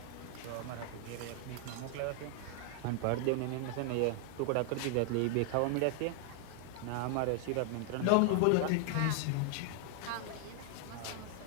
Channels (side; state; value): both; different; correlation 0.00